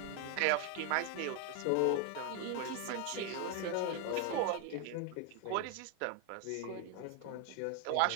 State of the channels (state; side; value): different; both; correlation 0.01